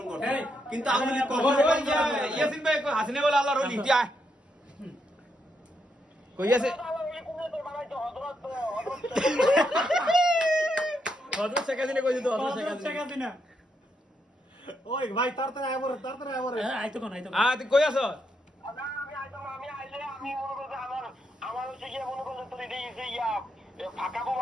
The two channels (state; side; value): normal; both; correlation 0.80